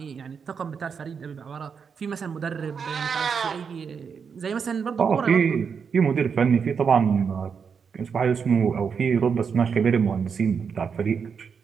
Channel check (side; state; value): left; quieter; 6.3 dB